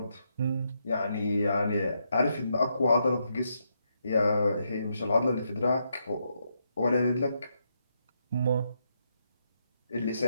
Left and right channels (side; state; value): both; inverted; correlation -0.80